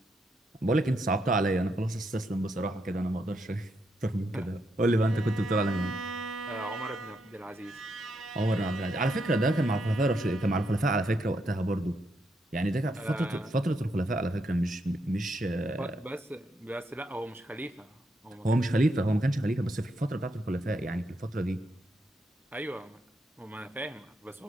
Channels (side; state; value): both; normal; correlation 0.79